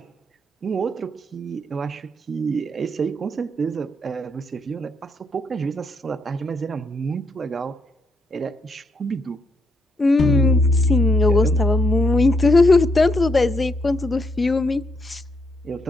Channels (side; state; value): both; normal; correlation 0.77